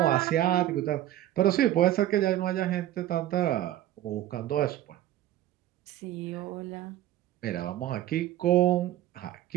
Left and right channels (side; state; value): left; quieter; 13.2 dB